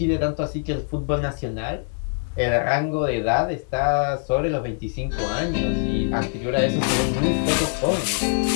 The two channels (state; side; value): silent; right; digital silence